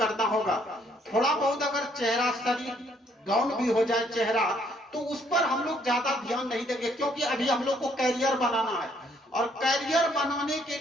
होगा। थोड़ा बहुत अगर चेहरा, शरीर डाउन भी हो जाए चेहरा, तो उस पर हम लोग ज्यादा ध्यान नहीं देंगे, क्योंकि अभी हम लोग को कैरियर बनाना है। और कैरियर बनाने के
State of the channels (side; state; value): both; normal; correlation 0.67